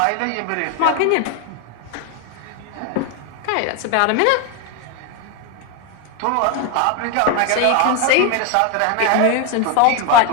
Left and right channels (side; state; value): both; different; correlation 0.01